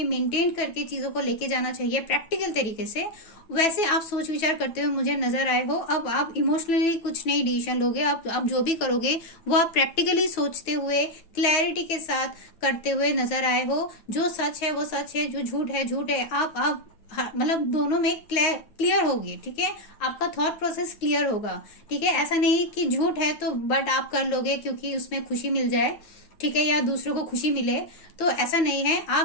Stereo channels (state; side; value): late; right; 9.0 ms